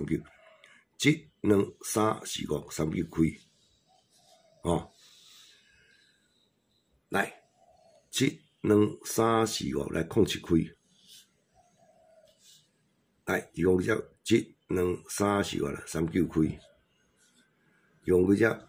2、3、4、5、39开，哦，来7、2、3、4、5来07开，来用只1、2、3、4、5啦39开，用只1、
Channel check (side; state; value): both; identical; correlation 1.00